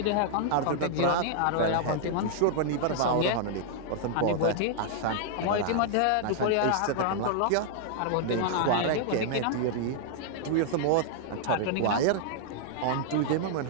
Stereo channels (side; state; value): both; different; correlation -0.01